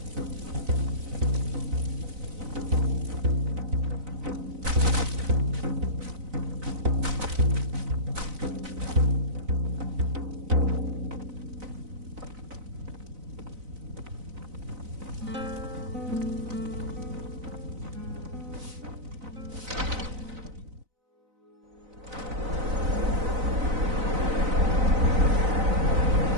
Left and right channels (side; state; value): left; late; 4.0 ms